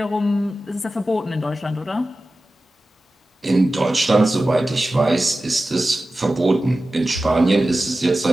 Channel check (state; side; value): normal; both; correlation 0.95